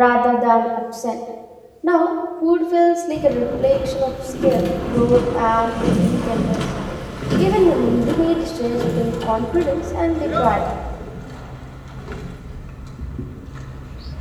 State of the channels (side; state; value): both; identical; correlation 1.00